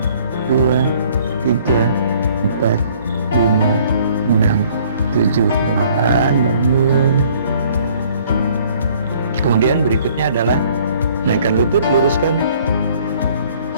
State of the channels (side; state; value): both; inverted; correlation -0.58